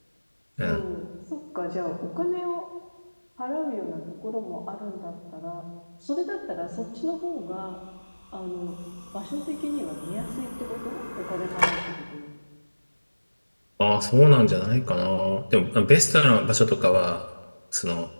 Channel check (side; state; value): both; inverted; correlation -1.00